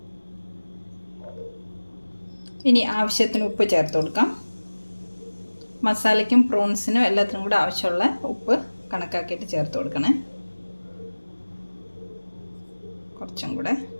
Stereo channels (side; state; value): both; inverted; correlation -1.00